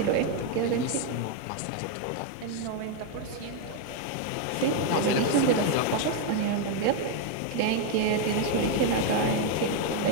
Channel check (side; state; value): both; different; correlation 0.01